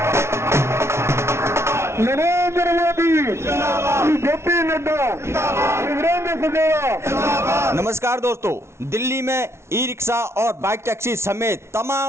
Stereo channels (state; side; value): late; left; 0.13 ms